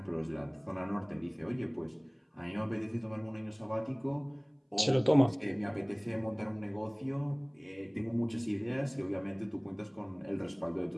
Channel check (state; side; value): identical; both; correlation 1.00